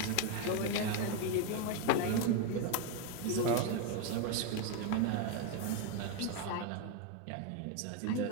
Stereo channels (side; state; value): both; different; correlation 0.02